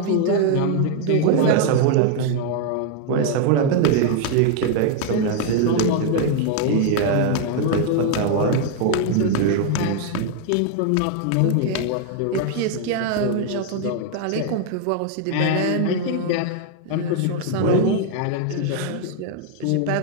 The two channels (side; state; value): both; different; correlation 0.00